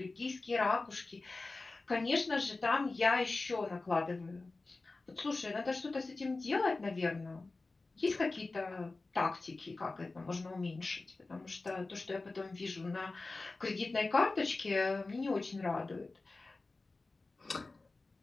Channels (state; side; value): quieter; right; 3.5 dB